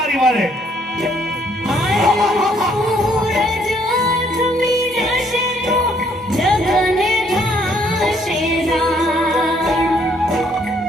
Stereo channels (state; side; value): normal; both; correlation 0.67